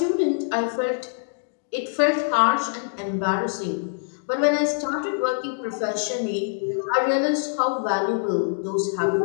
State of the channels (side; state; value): right; silent; digital silence